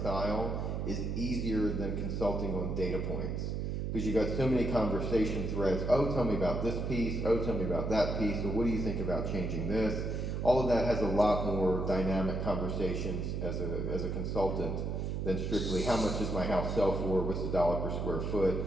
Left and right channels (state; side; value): noise; right; hum, 2 dB below the sound